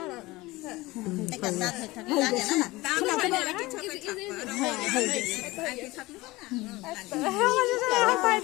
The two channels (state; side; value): quieter; right; 20.5 dB